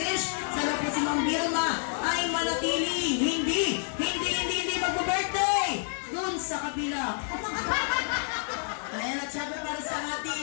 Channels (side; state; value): right; silent; 59 dB below the other